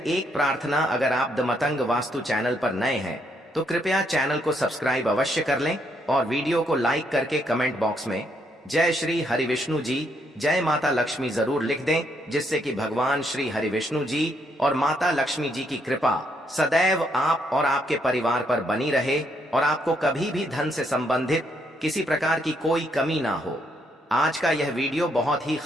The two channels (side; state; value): both; normal; correlation 0.74